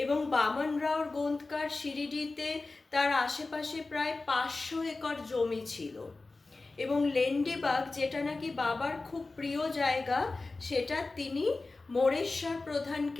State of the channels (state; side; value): quieter; right; 3.5 dB